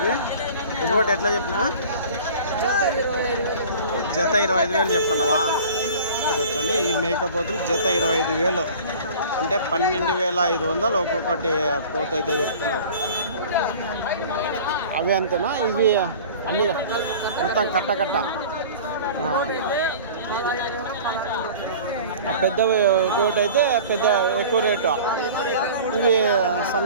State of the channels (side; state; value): both; inverted; correlation -0.42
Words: ఒకటి ఎట్లా చెప్పినా? జత 25,000 చెప్తున్నావా? వచ్చండి ఈ మేకపోతులు జత 25,000 అంటే 12,500 ఒక్కొక్కటి పోతు అయితే చెప్తున్నారు. అవి అంతేనా? ఇవి అన్ని మొత్తం కట్ట పెద్దవి ఒకటి అయితే పెద్ద ఎక్కువ రేటు. ఇవి